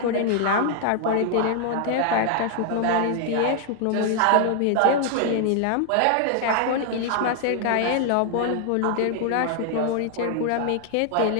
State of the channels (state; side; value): different; both; correlation 0.00